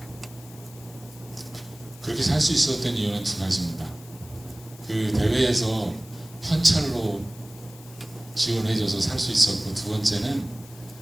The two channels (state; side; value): noise; left; hiss, 21 dB below the sound